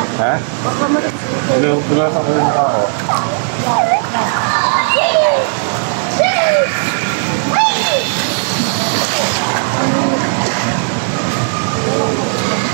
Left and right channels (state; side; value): silent; left; digital silence